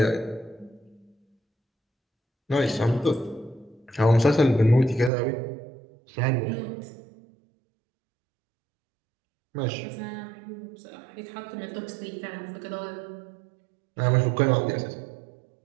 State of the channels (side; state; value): left; drops out; at 5.1 s